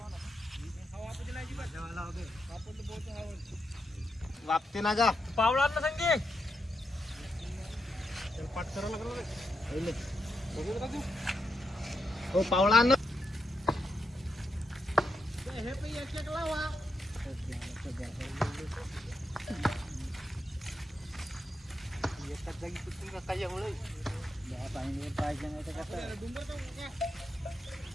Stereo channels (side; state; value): both; normal; correlation 0.84